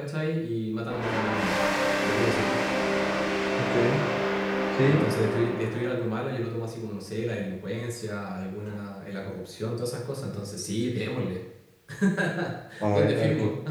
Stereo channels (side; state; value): both; identical; correlation 1.00